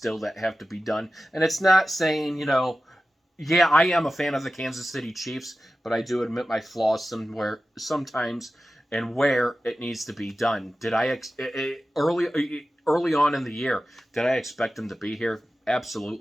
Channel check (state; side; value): normal; both; correlation 0.94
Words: that have to be done. And it's not saying yeah, I am a fan of the Kansas City Chiefs, but I do admit my flaws sometimes. And where it needs to be done. Did I early on in the year, did I expect them to be here?